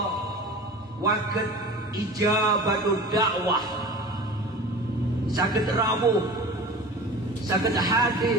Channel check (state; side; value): normal; both; correlation 0.37